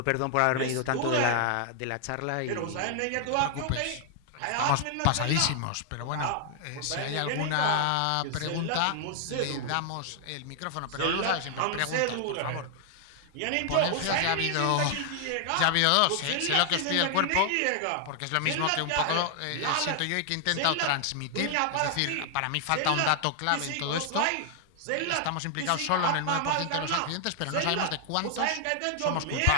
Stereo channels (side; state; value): both; different; correlation 0.00